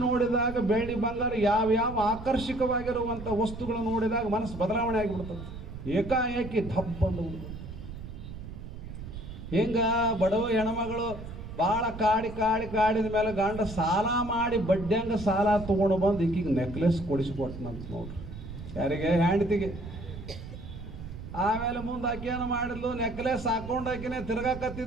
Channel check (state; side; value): noise; right; rumble, 11 dB below the sound